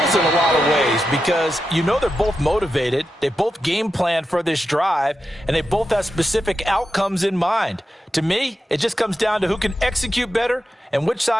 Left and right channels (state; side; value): normal; both; correlation 0.89